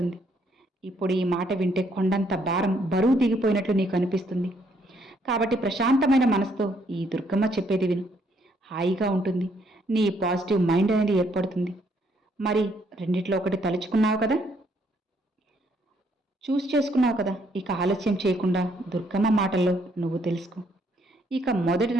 ఇప్పుడు ఈ మాట వింటే కొండంత భారం, బరువు దిగిపోయినట్లు నీకు అనిపిస్తుంది. కాబట్టి ప్రశాంతమైన మనసుతో ఈ దుర్గమ్మ చెప్పేది విను. హాయిగా ఉంటుంది, నీ పాజిటివ్ మైండ్ అనేది ఏర్పడుతుంది. మరి రెండిట్లో ఒకటి తలుచుకున్నావు కదా. చూస్ చేసుకున్నావు కదా, ఇక ఆలస్యం చేయకుండా దుర్గమ్మ మాటల్లో నువ్వు తెలుసుకో. ఇక మొదటి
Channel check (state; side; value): normal; both; correlation 0.70